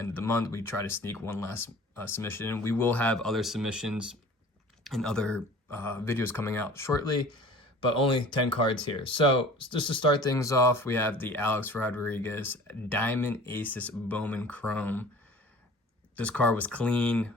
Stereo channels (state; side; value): normal; both; correlation 0.45